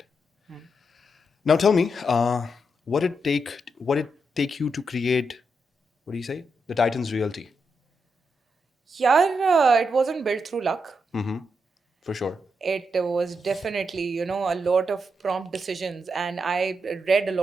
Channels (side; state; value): both; normal; correlation 0.83